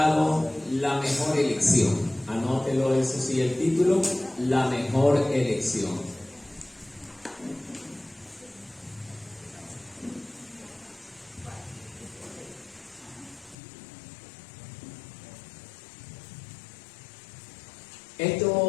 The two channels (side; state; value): right; drops out; at 13.6 s